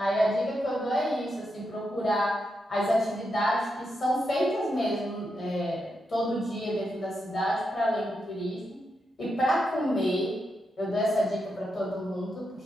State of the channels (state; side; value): normal; both; correlation 0.84